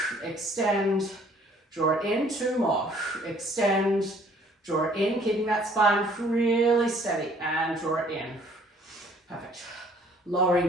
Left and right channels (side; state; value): both; normal; correlation 0.58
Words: Extend, draw it in. 2 more. Extend, draw it in, keeping that spine really steady, and draw it in. Perfect.